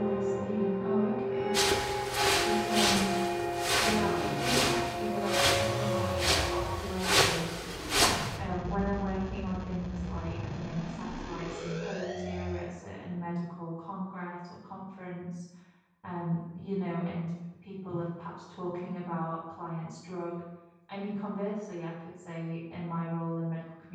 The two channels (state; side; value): identical; both; correlation 1.00